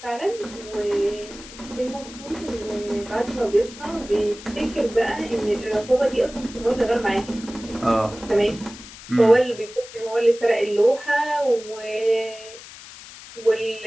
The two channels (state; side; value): noise; left; hiss, 16 dB below the sound